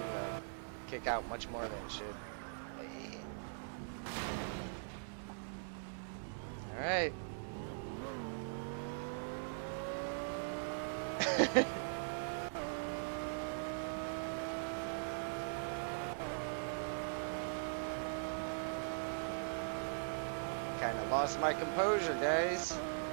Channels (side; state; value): left; silent; digital silence